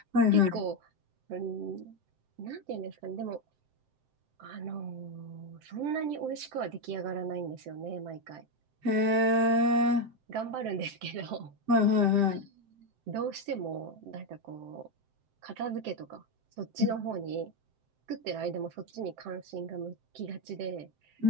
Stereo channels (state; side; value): late; left; 7.7 ms